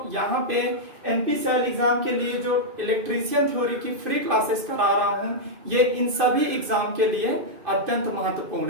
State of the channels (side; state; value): left; late; 2.5 ms